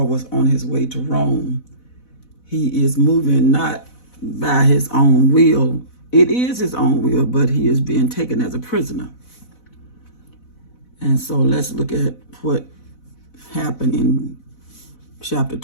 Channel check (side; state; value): right; late; 4.0 ms